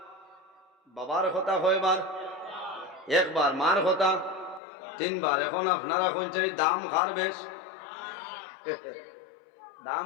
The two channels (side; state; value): right; drops out; at 4.6 s